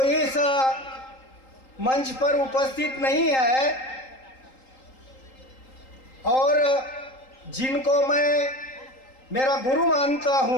इस मंच पर उपस्थित नहीं है और जिनको मैं मेरा गुरु मानता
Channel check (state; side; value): late; right; 3.8 ms